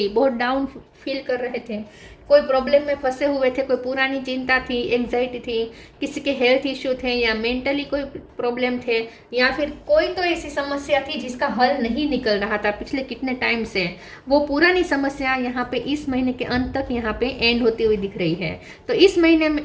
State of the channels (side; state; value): both; identical; correlation 1.00